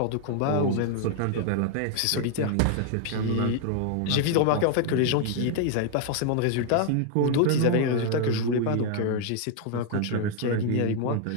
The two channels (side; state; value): both; different; correlation 0.00